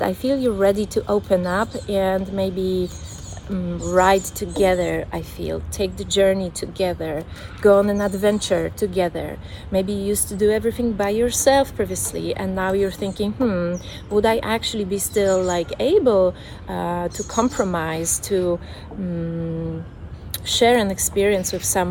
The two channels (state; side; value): identical; both; correlation 1.00